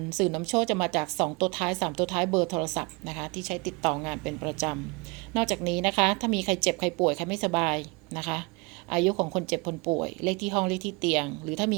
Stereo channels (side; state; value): left; quieter; 28.0 dB